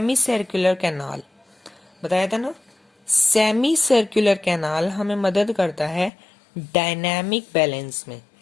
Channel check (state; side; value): drops out; right; at 6.1 s